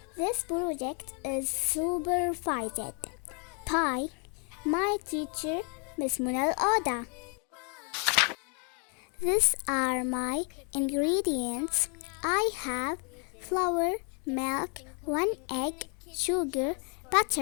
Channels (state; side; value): quieter; right; 37.4 dB